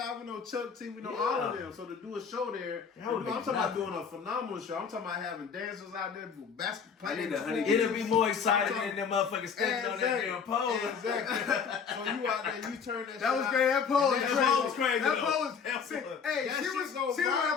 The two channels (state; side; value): quieter; right; 6.3 dB